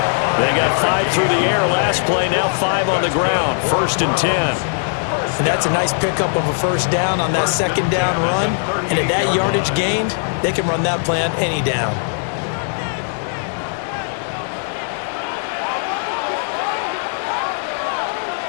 They got 5 through the air last play, now 5 on the ground, 1st and 10. And that's a nice pickup of a 1st down on that 2nd down run. And at that yardage gained, they can run that play on any down.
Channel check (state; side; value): silent; right; digital silence